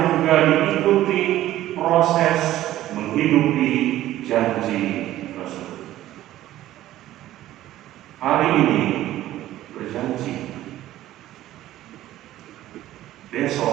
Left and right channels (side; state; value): left; quieter; 14.2 dB